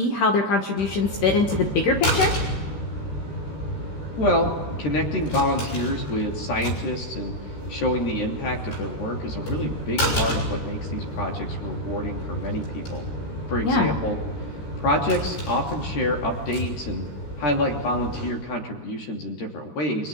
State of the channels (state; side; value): late; right; 13 ms